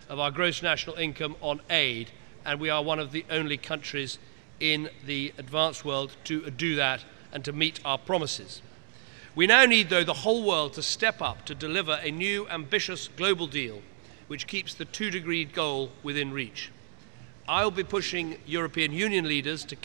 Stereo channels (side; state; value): left; silent; digital silence